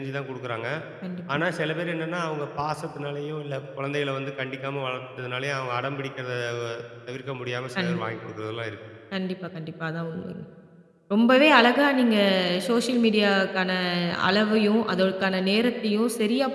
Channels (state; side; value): identical; both; correlation 1.00